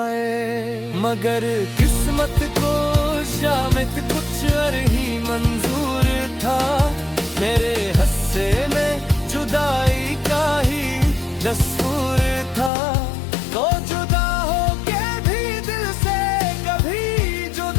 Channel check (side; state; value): right; drops out; at 12.7 s